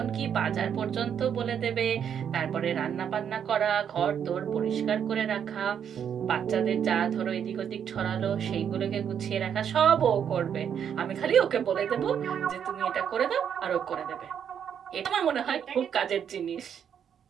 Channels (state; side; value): quieter; left; 8.3 dB